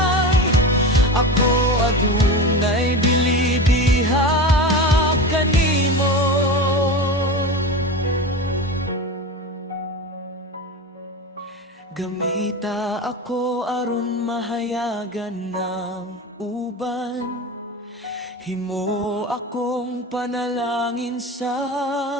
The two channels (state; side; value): normal; both; correlation 0.27